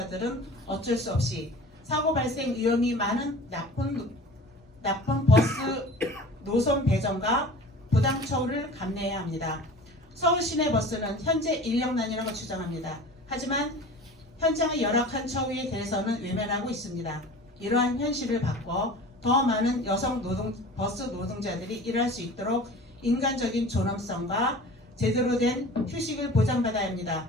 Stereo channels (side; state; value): both; normal; correlation 0.40